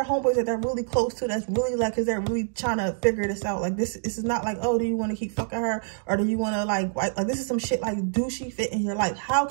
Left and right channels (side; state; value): left; silent; digital silence